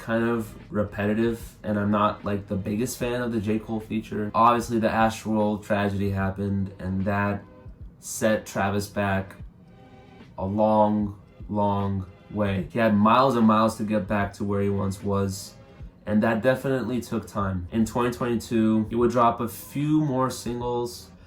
of repetitive, and I'm not like the biggest fan of the J. Cole feature. Obviously the Astroworld tragedy happened, and that set Travis back a long, long way. He had miles and miles to get back to where he once was, and that definitely took time. In 2022, he would drop a few more singles.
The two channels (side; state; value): both; identical; correlation 1.00